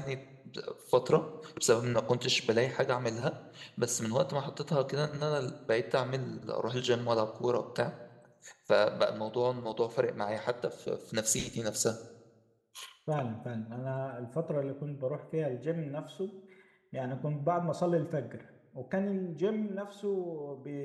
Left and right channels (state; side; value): identical; both; correlation 1.00